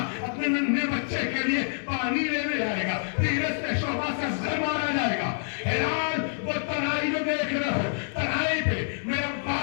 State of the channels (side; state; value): right; silent; 60 dB below the other